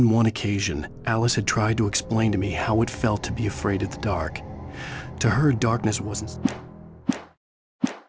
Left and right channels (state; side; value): identical; both; correlation 1.00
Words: one occasion, Alice had tried to explain to me how it felt to be afraid of the dark. To her, darkness wasn't